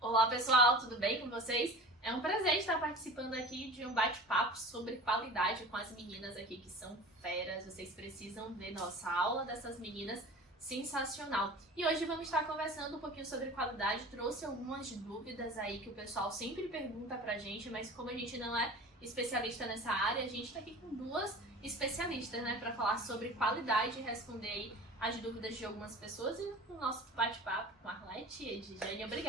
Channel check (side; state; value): both; normal; correlation 0.38